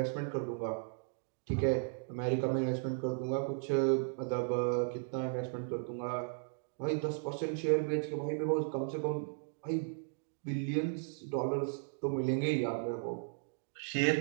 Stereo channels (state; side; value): silent; left; digital silence